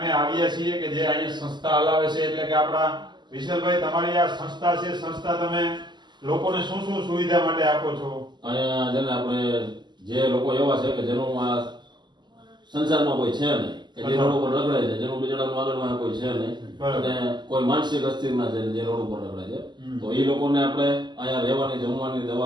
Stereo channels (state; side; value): late; left; 0.21 ms